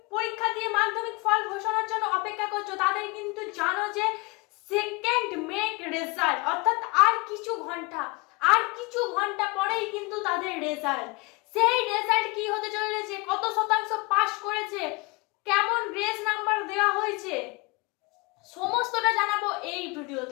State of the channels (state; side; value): quieter; right; 26.6 dB